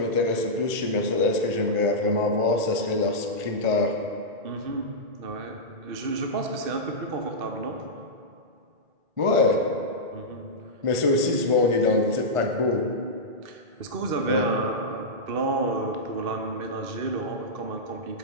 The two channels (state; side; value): late; left; 1.5 ms